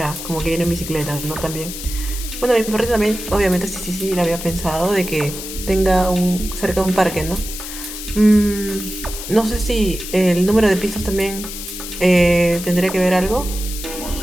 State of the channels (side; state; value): left; noise; hiss, 9 dB below the sound